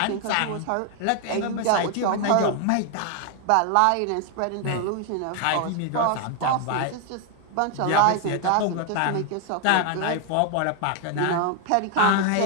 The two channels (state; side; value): different; both; correlation 0.01